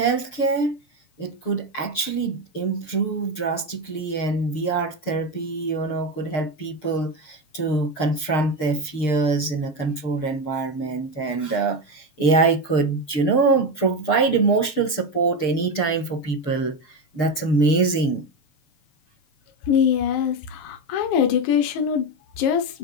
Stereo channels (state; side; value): late; right; 6.6 ms